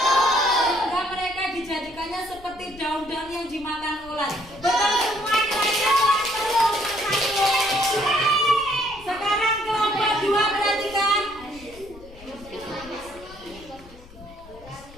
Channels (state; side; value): noise; left; rumble, 20 dB below the sound